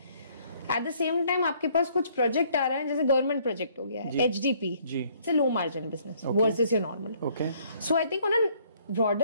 एट द सेम टाइम आपके पास कुछ प्रोजेक्ट आ रहा है, जैसे गवर्नमेंट प्रोजेक्ट हो गया है HDP, it's a low margin business versus your normal. So I think on a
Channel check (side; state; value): both; inverted; correlation -0.63